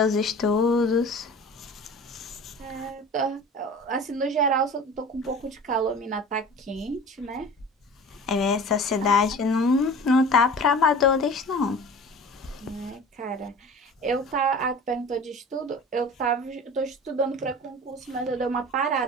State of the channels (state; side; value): normal; both; correlation 0.40